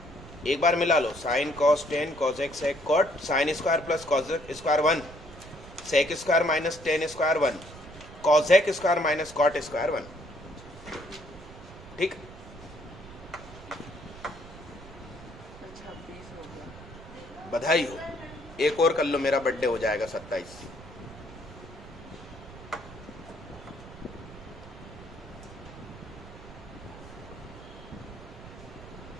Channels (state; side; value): noise; right; rumble, 17 dB below the sound